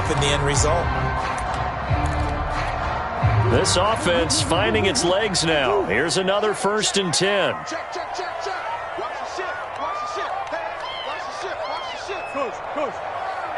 the end result. This offense finding its legs now. Here's another 1st and 10. Check, check, check, check. Watch the shift. Watch the shift. Hey, watch the shift. Watch the shift. Coach. Hey,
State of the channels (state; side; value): identical; both; correlation 1.00